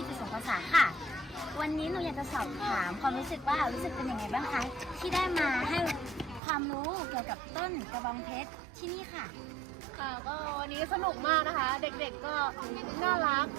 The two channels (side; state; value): left; drops out; at 6.4 s